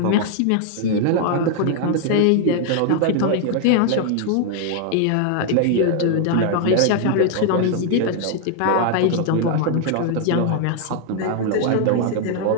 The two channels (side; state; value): both; different; correlation 0.00